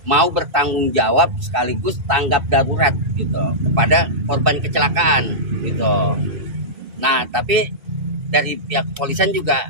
mau bertanggung jawab sekaligus tanggap darurat gitu kepada korban kecelakaan gitu. Nah, tapi dari pihak kepolisian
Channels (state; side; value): late; left; 2.6 ms